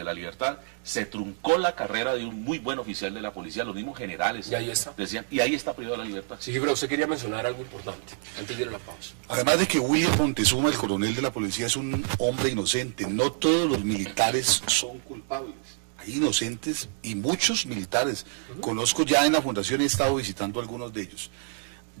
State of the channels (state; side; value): silent; left; 60 dB below the other